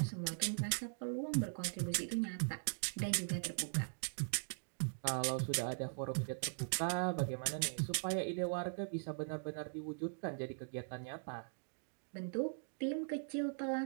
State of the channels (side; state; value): left; silent; digital silence